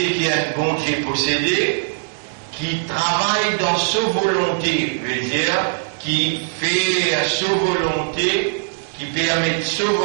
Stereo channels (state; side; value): silent; left; 65 dB below the other